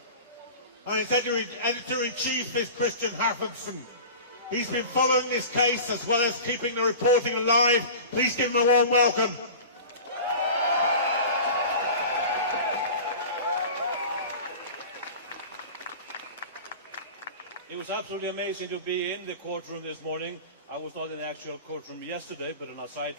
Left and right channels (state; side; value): inverted; both; correlation -0.36